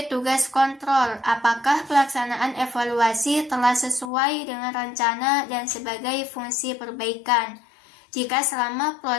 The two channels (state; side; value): drops out; right; at 4.1 s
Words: tugas kontrol apakah pelaksanaan evaluasi telah sesuai dengan rencana dan sebagai fungsi perbaikan jika selama